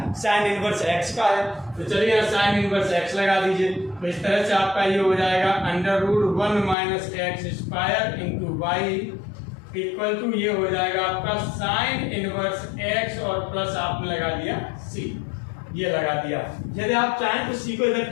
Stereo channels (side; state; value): right; drops out; at 6.8 s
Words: साइन इनवर्स x का है। तो चलिए यहाँ साइन इनवर्स x लगा दीजिए, तो इस तरह से आपका ये हो जाएगा under root 1 minus x square into Y equal to ये हो जाएगा आपका साइन इनवर्स x और प्लस आपने लगा दिया c, ये लगा दिया। यदि आप चाहें तो c को इधर